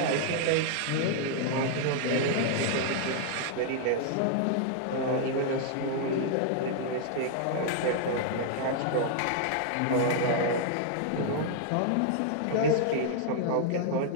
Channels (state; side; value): different; both; correlation 0.00